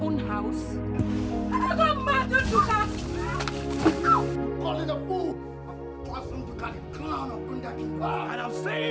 house? I got mad, Nduka! Call it a fool! And I'm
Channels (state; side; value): identical; both; correlation 1.00